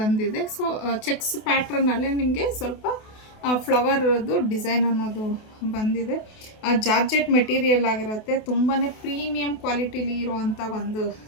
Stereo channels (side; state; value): right; late; 28 ms